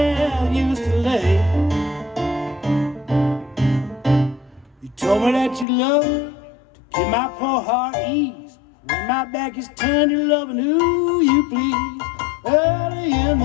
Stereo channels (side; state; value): right; drops out; at 5.7 s